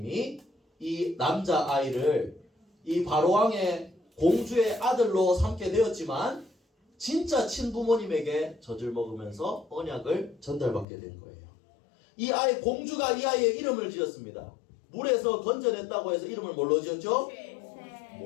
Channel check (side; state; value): right; drops out; at 10.9 s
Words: 이 남자아이를 이 바로왕의 공주의 아들로 삼게 되었지만 진짜 친부모님에게 젖을 먹으면서 언약을 전달받게 된 거예요. 이 아이, 공주가 이 아이의 이름을 지었습니다. 물에서 건져냈다고 해서 이름을 뭘로 지었죠?